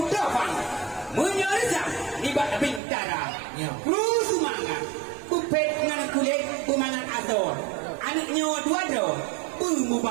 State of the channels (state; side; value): drops out; left; at 2.8 s